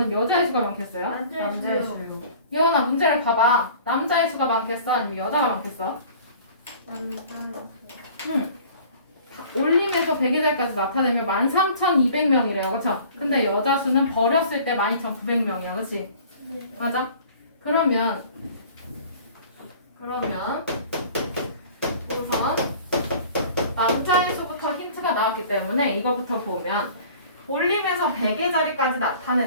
여자의 수가 많겠어요? 남자의 수. 예원아 문제를 봐봐. 남자의 수가 많겠어? 아니면 여자가 많겠어? 올림에서 100의 자리까지 나타내면 13,200명이래요, 그쵸? 근데 여자 수는 버렸을 때 12,900명이야, 그치? 맞아? 그러면 우선 남자의 수부터 힌트가 나왔기 때문에 이거부터 보면 올림에서 100의 자리까지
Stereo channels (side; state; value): both; inverted; correlation -0.48